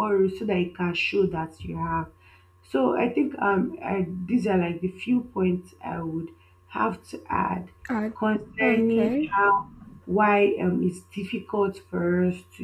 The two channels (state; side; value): identical; both; correlation 1.00